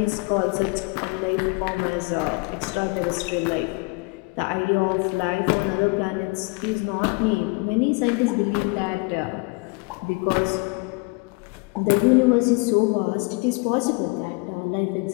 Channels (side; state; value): right; quieter; 28.9 dB